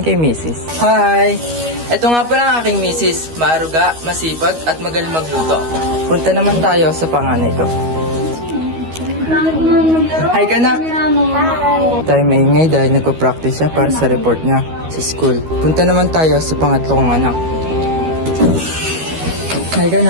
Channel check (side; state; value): left; late; 13 ms